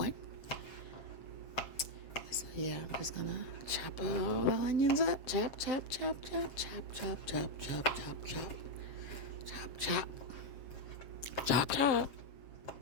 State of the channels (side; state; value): right; late; 7.5 ms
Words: So yeah, I'm just gonna chop all the onions up. Chop, chop, chop, chop, chop, chop, chop, chop, chop, chop. Chop, chop. Chop, chop.